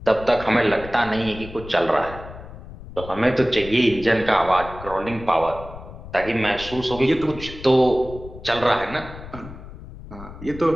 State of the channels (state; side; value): noise; left; rumble, 14 dB below the sound